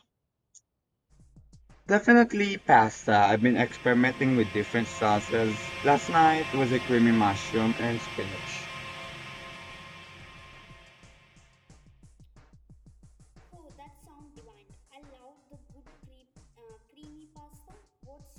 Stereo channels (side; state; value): both; identical; correlation 1.00